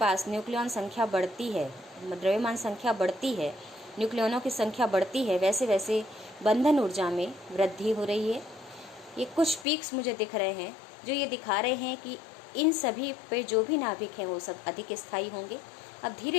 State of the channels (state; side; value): drops out; right; at 9.7 s